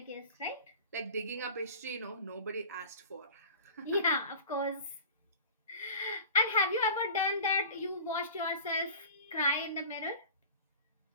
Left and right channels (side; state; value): both; inverted; correlation -0.39